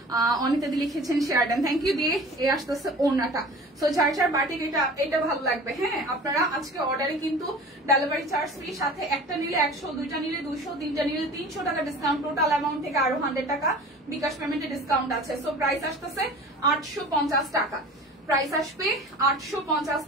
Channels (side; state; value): both; normal; correlation 0.41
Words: অনিতা দি লিখেছেন শেয়ার দেন, থ্যাংক ইউ দিয়ে। এই আসতেছে ওনাটা। সো যার যার বাটিক এটা ভালো লাগবে, হ্যাঁ, আপনারা আজকে অর্ডারে কিন্তু ডেলিভারি চার্জ ফ্রি, সাথে একটা নিলে 100, দুইটা নিলে 200, 3টা নিলে 300 টাকা ডিসকাউন্ট। টোটাল অ্যামাউন্ট থেকে আরো 100 টাকা বিকাশ পেমেন্টে ডিসকাউন্ট আছে। সো প্রাইস আসতেছে 850 টাকা। প্রাইস আসবে 850